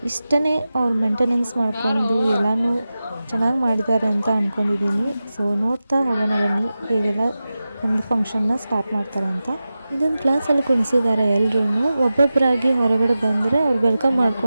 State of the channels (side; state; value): both; inverted; correlation -0.94